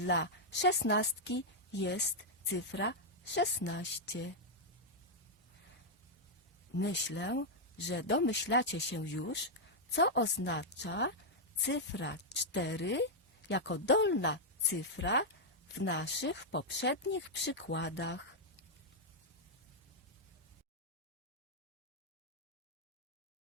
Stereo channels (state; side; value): normal; both; correlation -0.03